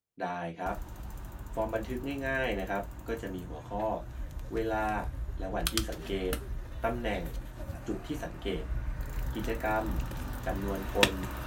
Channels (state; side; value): identical; both; correlation 1.00